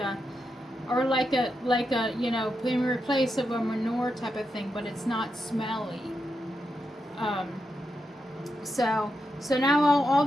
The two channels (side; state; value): both; normal; correlation 0.86